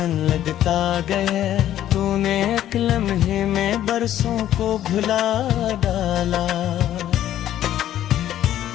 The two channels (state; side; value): quieter; right; 12.0 dB